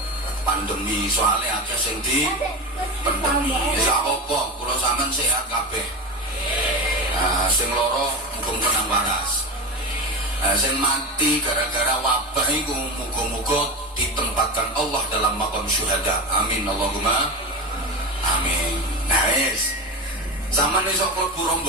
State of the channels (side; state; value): both; normal; correlation 0.22